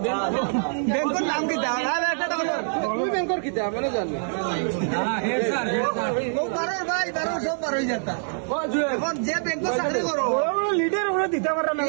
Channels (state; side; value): silent; left; digital silence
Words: ব্যাংকের নাম কি দাও তুমি ব্যাংকের কি দাও মানে জানি ভাই সব পার হয়ে যেতা এখন যে ব্যাংক চাকরি করো লিডার ওরা দিতে পারে না